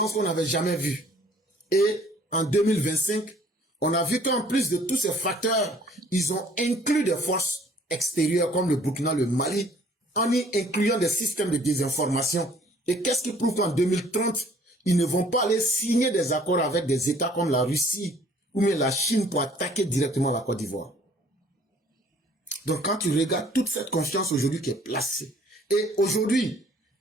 qu'on n'avait jamais vu. Et en 2025, on a vu qu'en plus de tous ces facteurs, ils ont inclus des forces extérieures comme le Burkina, le Mali, en y incluant des systèmes de désinformation. Et qu'est-ce qui prouve qu'en 2030, ils ne vont pas aller signer des accords avec des États comme la Russie ou même la Chine pour attaquer directement la Côte d'Ivoire. Donc quand tu regardes toute cette confiance aujourd'hui qui est placée, et aujourd'hui,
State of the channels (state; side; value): normal; both; correlation 0.57